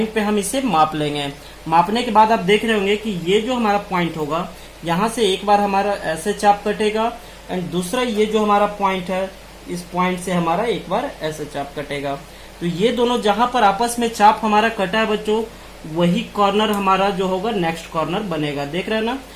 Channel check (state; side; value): identical; both; correlation 1.00